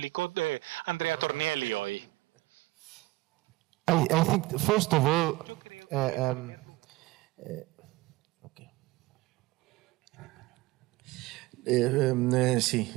Andrea Tornielli hoy. I think, first of all, Yo creo que en primer lugar, sí,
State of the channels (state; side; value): quieter; left; 20.3 dB